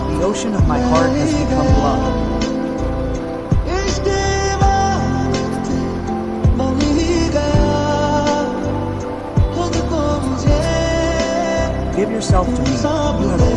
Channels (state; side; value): identical; both; correlation 1.00